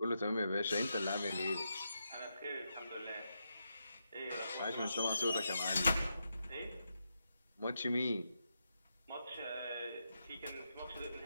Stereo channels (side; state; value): both; inverted; correlation -0.84